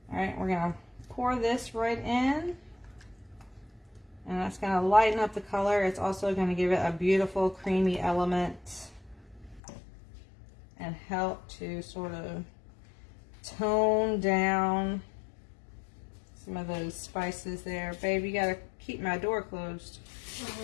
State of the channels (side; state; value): right; drops out; at 9.6 s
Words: all right, we're gonna pour this right in. And that's gonna lighten up the color. It's also gonna give it a beautiful creamy element and help to sort of tone down some of those spices there. Babe, you gotta keep my door closed.